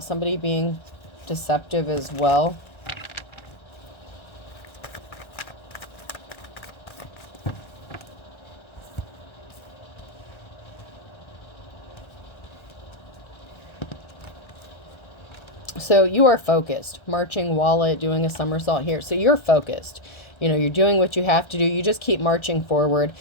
somebody being deceptive as well. So you are focused, marching wallet, doing a somersault here. So you're focused. You know, you're doing what you have to do. You just keep marching forward.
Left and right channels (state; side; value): late; right; 1.3 ms